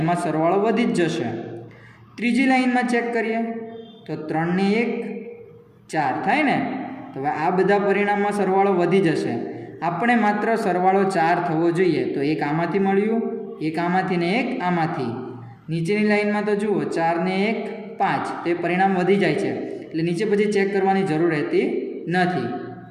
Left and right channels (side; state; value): both; identical; correlation 1.00